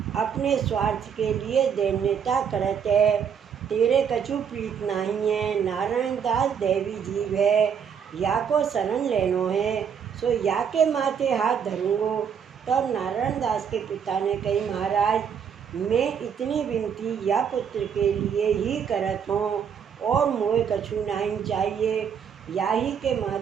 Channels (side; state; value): left; quieter; 7.4 dB